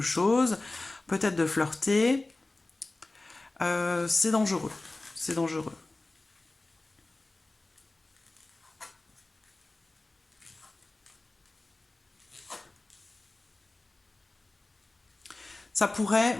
chose, peut-être de flirter. C'est dangereux. C'est dangereux. Ça pourrait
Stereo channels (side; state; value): right; quieter; 3.0 dB